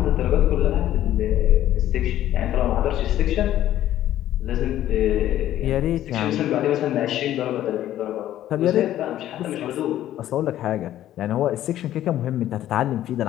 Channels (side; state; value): right; quieter; 12.7 dB